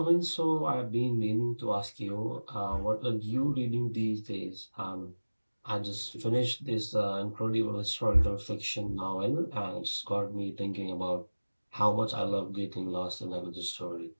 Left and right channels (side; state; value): both; inverted; correlation -1.00